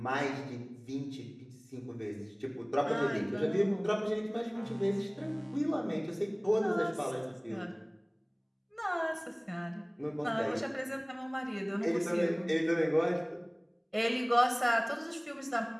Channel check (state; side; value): identical; both; correlation 1.00